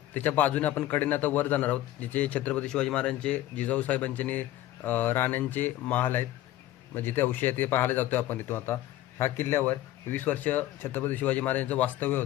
त्याच्या बाजूने आपण कडेने आता वर जाणार आहोत जिथे छत्रपती शिवाजी महाराजांचे जिजाऊ साहेबांचे राण्यांचे महाल आहेत. म्हणजे जिथे अवशेष आहे ते पाहायला जातोय आपण इथून. आता ह्या किल्ल्यावर 20 वर्ष छत्रपती शिवाजी महाराजांचं वास्तव्य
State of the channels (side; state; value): right; quieter; 14.3 dB